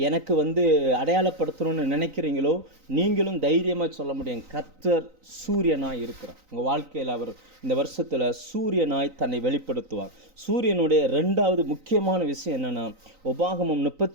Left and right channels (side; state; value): left; late; 3.9 ms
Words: அடையாளப்படுத்தணும்னு நினைக்கிறீங்களோ, நீங்களும் தைரியமாக சொல்ல முடியும், கர்த்தர் சூரியனாய் இருக்கிறார். உங்கள் வாழ்க்கையில் அவர் இந்த வருஷத்தில் சூரியனாய் தன்னை வெளிப்படுத்துவார். சூரியனுடைய 2வது முக்கியமான விஷயம் என்னென்னா, உபாகமம்